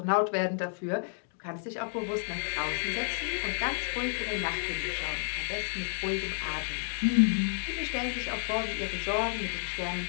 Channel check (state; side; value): silent; right; 56 dB below the other